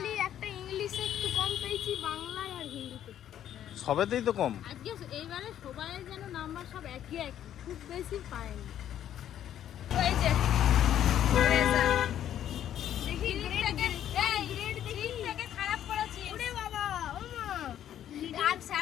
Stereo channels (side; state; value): right; quieter; 10.8 dB